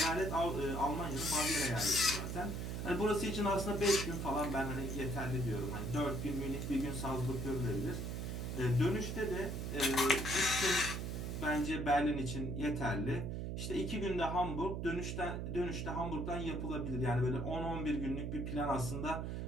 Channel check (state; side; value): noise; right; hum, 3 dB below the sound